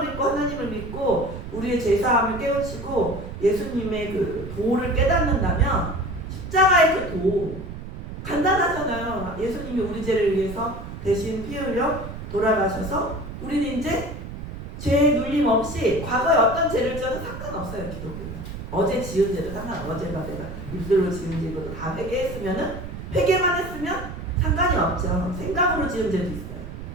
읽고 하나님을 믿고 우리의 죄사함을 깨우치고 예수님의 그 도를 깨닫는다면 십자가의 그 도 간단하잖아요. 예수님이 우리 죄를 위해서 대신 피 흘려 돌아가셔서 우리는 이제 죄 눌림 없이 과거에 어떤 죄를 지어도 상관없어요. 기독교는. 어제 지은 죄도 어제가 내가 일들로 지은 죄도 다 회개했으면은 회개만 했으면 상관이 없죠. 생각으로 지은 죄도 있어요.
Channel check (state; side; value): noise; right; rumble, 10 dB below the sound